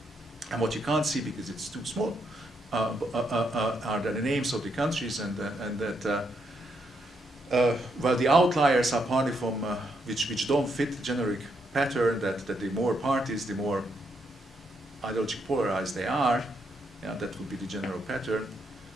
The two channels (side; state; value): both; normal; correlation 0.78